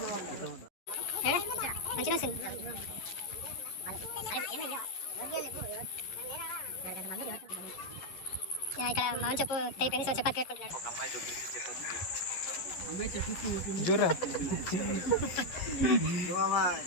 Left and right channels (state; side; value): late; right; 11 ms